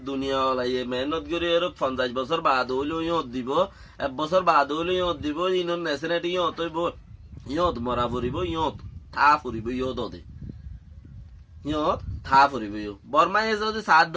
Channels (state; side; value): identical; both; correlation 1.00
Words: দুনিয়া ওলাইয়ে মেহনত করে 50 বছর বাদ হইলেও ইয়ত দিব 1 বছর বাদ হইলেও ইয়ত দিব ইনর নেশনেটি ইয়ত হইব ইয়ত মরা ফুরিব ইয়ত থা ফুরিব ইয়ত ওদে ইয়ত থা ফুরিব বর্মায় যদি সাত